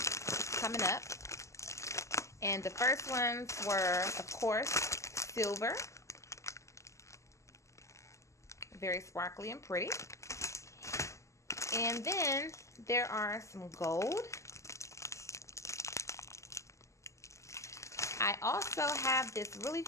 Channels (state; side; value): late; right; 0.14 ms